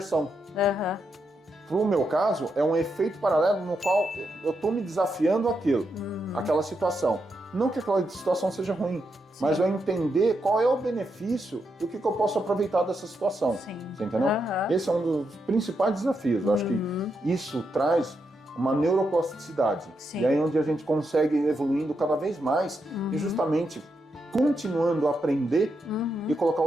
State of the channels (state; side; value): normal; both; correlation 0.83